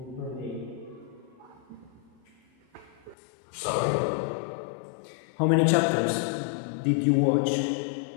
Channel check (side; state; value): right; drops out; at 3.2 s